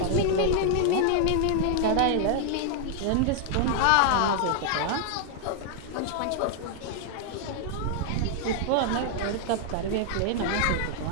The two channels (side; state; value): both; different; correlation 0.00